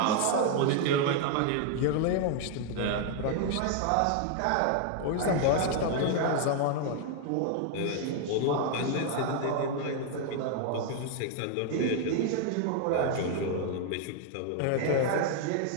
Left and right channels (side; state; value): both; different; correlation 0.00